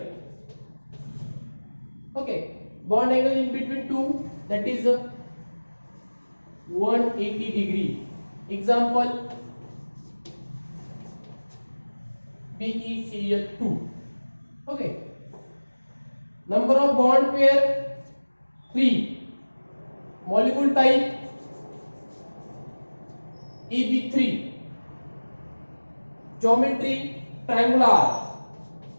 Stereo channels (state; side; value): inverted; both; correlation -1.00